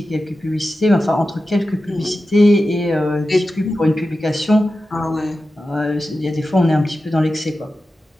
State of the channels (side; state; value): both; normal; correlation 0.93